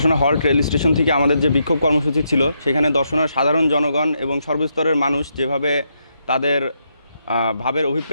হল্ট রেল স্টেশন থেকে আমাদের যে বিক্ষোভ কর্মসূচি ছিল, সেখানে দর্শনার সাধারণ জনগণ এবং সর্বস্তরের মানুষ যেভাবে তাদের ভাবের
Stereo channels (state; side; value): inverted; both; correlation -0.80